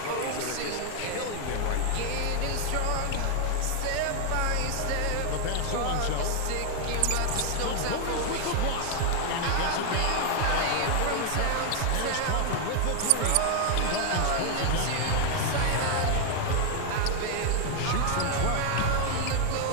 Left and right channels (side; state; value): both; different; correlation 0.00